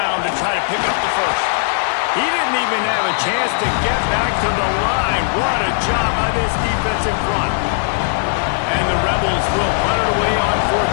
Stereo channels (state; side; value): silent; right; digital silence